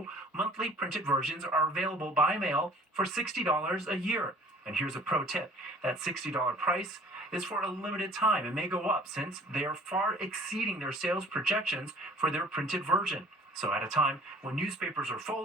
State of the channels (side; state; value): both; normal; correlation 0.51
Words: monthly printed versions are available by mail for $60 a year. And here's a pro tip. That $60 price is for a limited time and may go up since they are far exceeding their sales projections for their printed version. So at a time when newspapers are